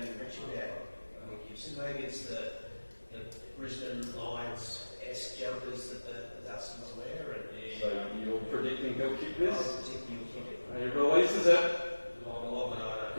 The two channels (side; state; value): both; inverted; correlation -1.00